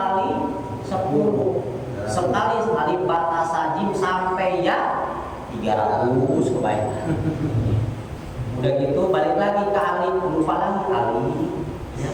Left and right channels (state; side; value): identical; both; correlation 1.00